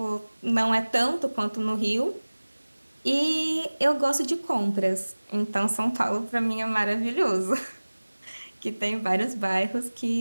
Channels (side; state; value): both; inverted; correlation -1.00